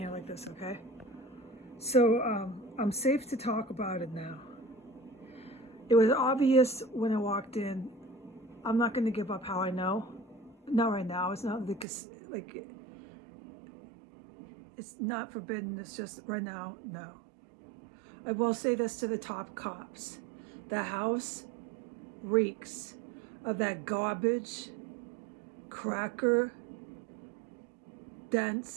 like this, okay? So I'm safe to talk about it now. It was obvious when I walked in. I'm not going to give up how I know. Not right now. It's not like it's not forbidden. It's just right now, no. I will say this to the top cops. The house reeks of that garbage, cracker,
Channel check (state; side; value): drops out; left; at 11.9 s